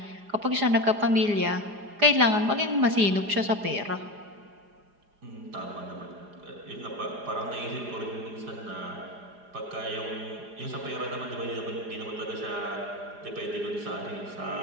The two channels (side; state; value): left; late; 4.9 ms